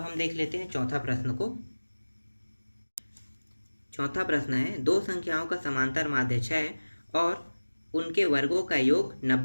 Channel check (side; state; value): both; inverted; correlation -1.00